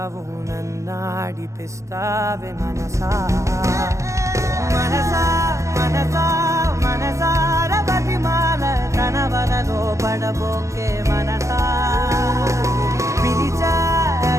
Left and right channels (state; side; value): late; left; 0.15 ms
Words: నన్నాడిపిస్తావే మనసా మనసా మనసా మనసార బతిమాల తన వలలో పడబోకే మనసా పిలిచా